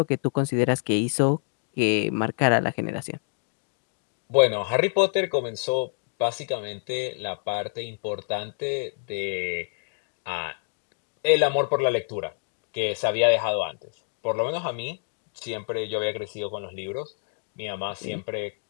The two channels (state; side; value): silent; right; 60 dB below the other